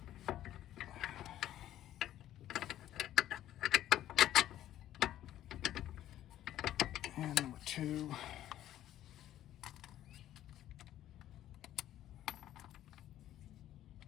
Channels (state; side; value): quieter; right; 12.6 dB